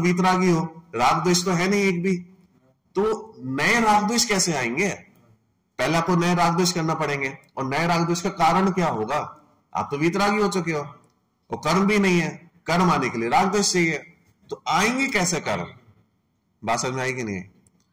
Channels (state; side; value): identical; both; correlation 1.00